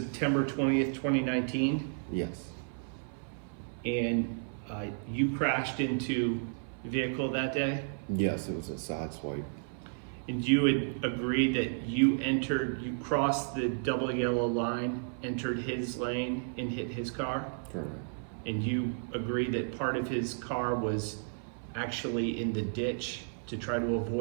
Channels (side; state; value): left; silent; 56 dB below the other